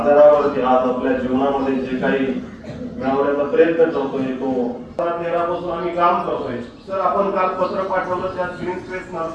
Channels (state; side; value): identical; both; correlation 1.00